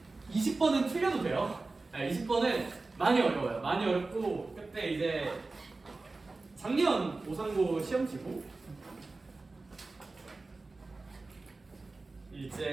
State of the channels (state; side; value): quieter; left; 3.5 dB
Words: 20번은 틀려도 돼요. 20번은 많이 어려워요. 많이 어렵고 그때 이제 작년 오상고 시험치고